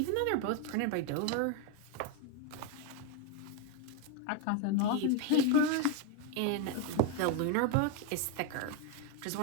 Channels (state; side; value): different; both; correlation 0.01